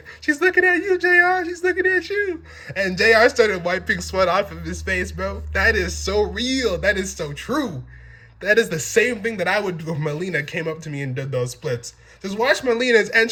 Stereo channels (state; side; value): identical; both; correlation 1.00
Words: "She's looking at you, JR. She's looking at you." And JR started wiping sweat off of his face, bro. That is so real. That is so true. That is the same thing that I would do if Melina came up to me and did those splits. Just watch Melina's